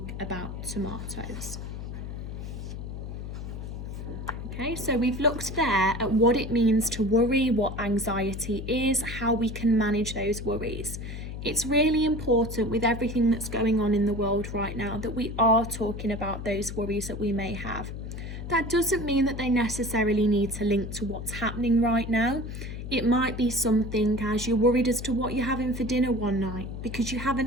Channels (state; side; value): noise; left; hum, 8 dB below the sound